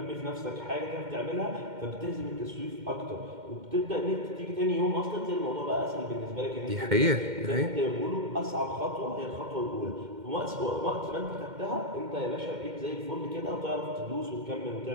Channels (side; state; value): left; late; 2.1 ms